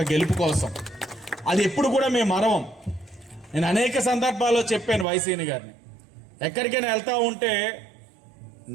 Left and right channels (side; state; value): left; drops out; at 5.1 s